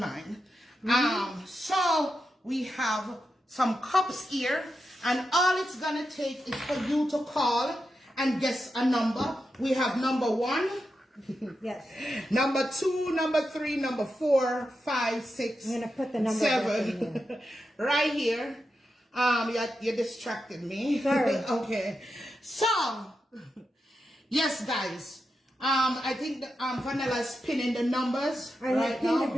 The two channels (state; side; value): normal; both; correlation 0.88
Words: So, we have some cups here, and all it's gonna take is for you to call and guess a number. We have number 1, Yes. number 2, number 3, number 4, 5, 6, I'm gonna put the number back in 7. Right here. You distracted me. Sorry. Okay. So, yes, guys. I think Vanilla's pinning the numbers I right had pinned now. it